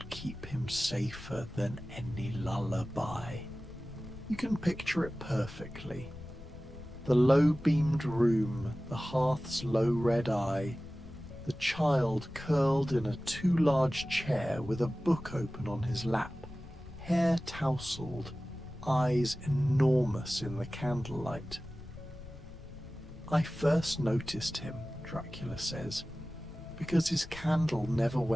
keep him safer than any lullaby. You can picture it perfectly. The low-beamed room, the hearth's low red eye, the child curled in a too large chair with a book open on his lap, hair tousled, eyes enormous in the candlelight. I first noticed him, Dracula says, because his candle never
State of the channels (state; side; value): noise; left; rumble, 16 dB below the sound